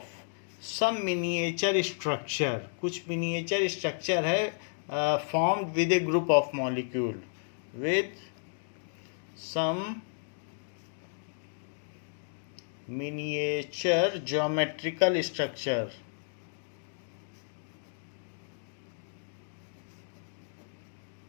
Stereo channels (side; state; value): right; silent; digital silence